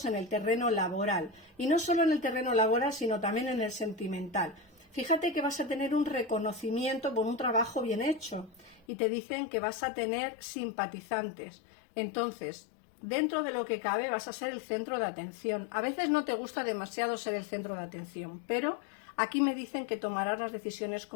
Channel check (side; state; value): right; drops out; at 8.8 s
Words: en el terreno laboral. Y no solo en el terreno laboral, sino también en el sentimental. Fíjate que vas a tener un reconocimiento por un trabajo bien hecho. Y te dicen que vas a tener simpatizantes. Entonces, dentro de lo que cabe, vas a ser el centro de atención. A veces no te gusta demasiado ser el centro de atención, pero aquí me dicen que tomarás las decisiones